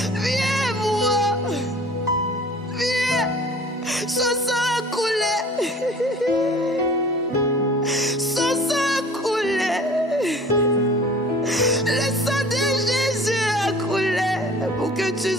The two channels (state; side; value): normal; both; correlation 0.47